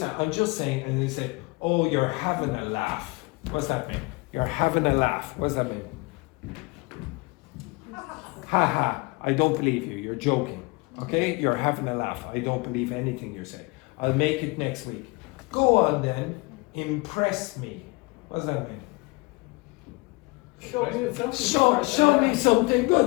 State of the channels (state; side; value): quieter; right; 26.2 dB